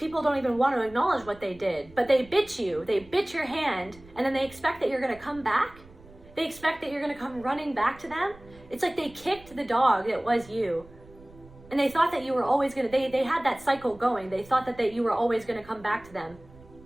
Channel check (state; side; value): noise; right; rumble, 23 dB below the sound